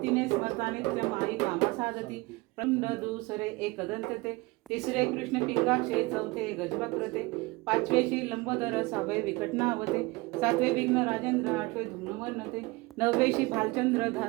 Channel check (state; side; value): quieter; left; 23.4 dB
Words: स्मरता नित्य माई कामा साधती खंड दुसरे एकदंतते तिसरे कृष्ण पिंगाक्षे चौथे गजवक्रते पाचवेशी लंबोदर सहावे विकटनावते सातवे विघ्न राजेंद्र आठवे धूम्रवर्णते नववेशी भालचंद्र